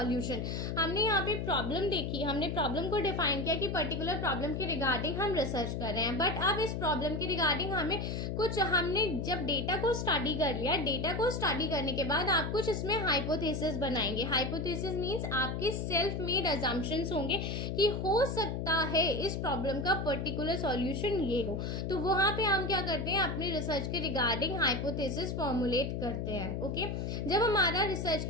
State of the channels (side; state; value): left; noise; hum, 2 dB below the sound